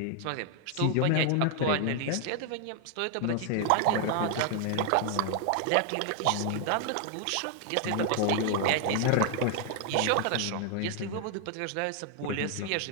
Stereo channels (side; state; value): both; different; correlation 0.00